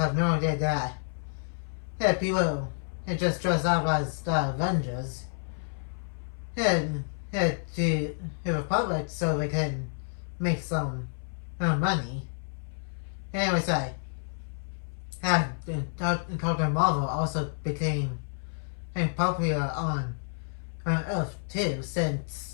no idea that people just dress up as the Avengers and to the public so they can make some money. Anyways, Captain Marvel also became popular on Earth too,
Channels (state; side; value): silent; right; 58 dB below the other